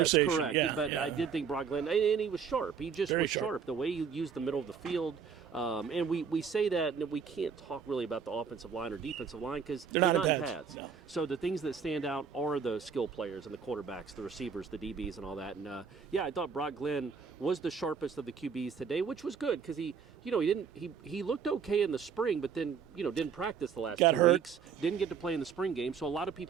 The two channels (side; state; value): left; quieter; 6.5 dB